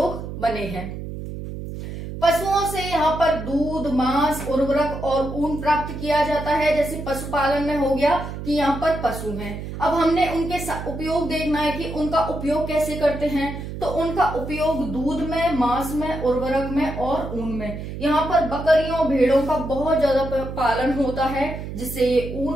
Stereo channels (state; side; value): noise; right; hum, 8 dB below the sound